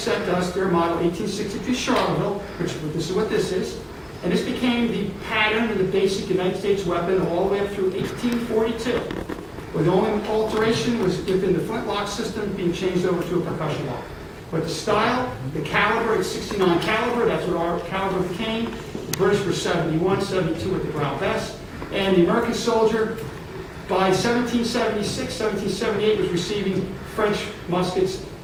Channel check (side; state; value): both; identical; correlation 1.00